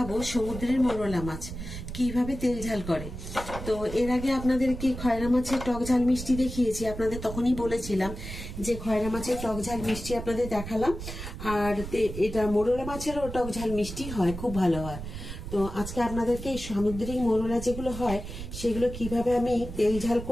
সমুদ্রের মোরলা মাছ কিভাবে তেল ঝাল করে। তো এর আগে আপনাদেরকে খয়রা মাছের টক ঝাল মিষ্টি দেখিয়েছি। আপনাদের তখনই বলেছিলাম যে খয়রা মাছের টক ঝাল মিষ্টি আপনাদের দেখালাম, আর এটা মোরলা মাছেরও টক ঝাল মিষ্টি হয়, খুব ভালো হয়। তো আজকে আপনাদেরকে এই সামুদ্রিক মোরলা যেগুলো হয় সেগুলো কিভাবে আমি তেল ঝাল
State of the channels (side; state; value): right; noise; rumble, 9 dB below the sound